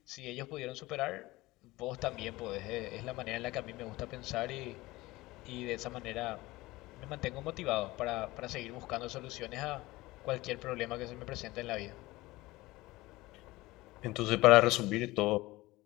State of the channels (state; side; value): quieter; right; 19.7 dB